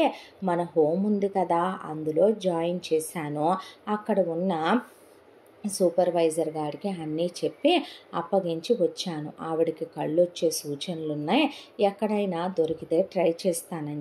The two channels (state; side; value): identical; both; correlation 1.00